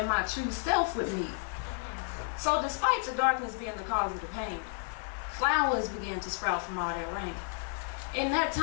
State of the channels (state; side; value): silent; right; 57 dB below the other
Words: my true self would meet. So despite the darkness being the cause of the pain, flowers began to sprout from all that rain. In that